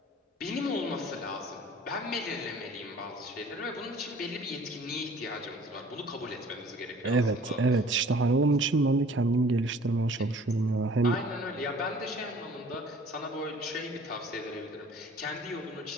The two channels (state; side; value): normal; both; correlation 0.50